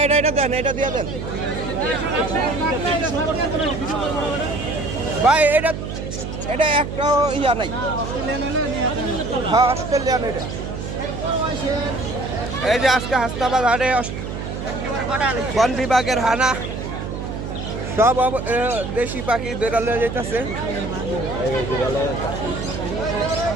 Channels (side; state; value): right; noise; hum, 6 dB below the sound